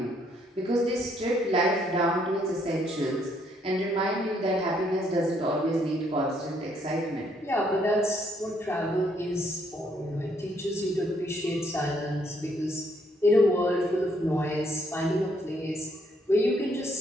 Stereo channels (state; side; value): normal; both; correlation 0.70